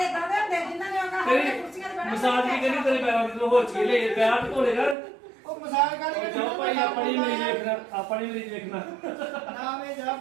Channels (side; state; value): left; drops out; at 5.0 s